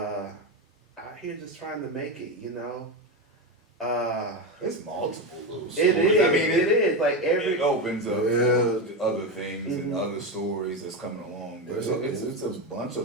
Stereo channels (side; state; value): both; normal; correlation 0.15